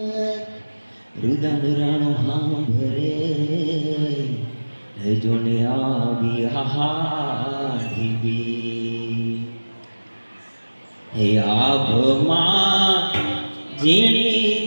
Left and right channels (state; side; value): inverted; both; correlation -1.00